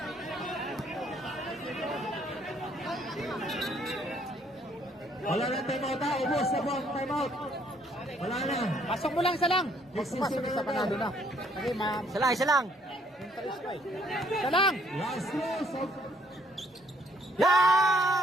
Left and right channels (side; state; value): both; normal; correlation 0.65